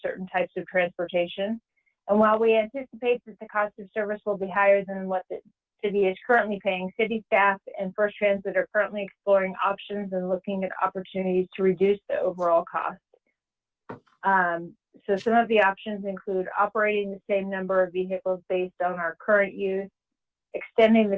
types of transportation. And while we anticipate that the cost of service will be higher than what the city is currently paying, city staff and First Transit are currently exploring options and looking at opportunities to reduce the overall cost. So some of the options include operating the same number of vehicles based on our current use, extending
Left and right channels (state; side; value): identical; both; correlation 1.00